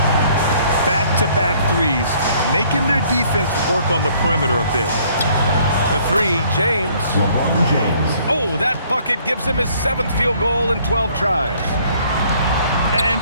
Back-to-back threes, making their defense work on the perimeter a bit. The 3, James. LeBron James. Oh, that bucket gives him his 7th field goal in 12 tries. And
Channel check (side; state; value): both; inverted; correlation -0.61